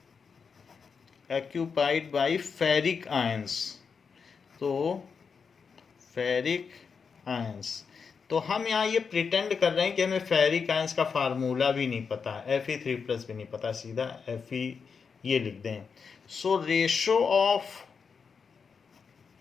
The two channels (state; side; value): quieter; right; 5.8 dB